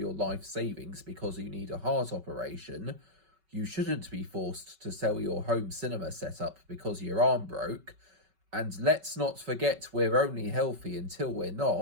life savings because you need a heart operation. You shouldn't be forced to sell your home cinema setup because your arm broke. And let's not forget we're only healthy until we're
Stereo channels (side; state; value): left; late; 5.3 ms